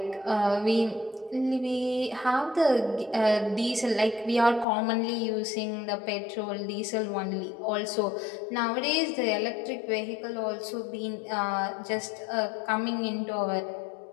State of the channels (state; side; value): drops out; right; at 4.7 s